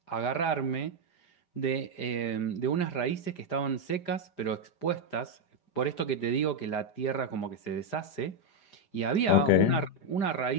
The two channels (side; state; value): right; late; 5.0 ms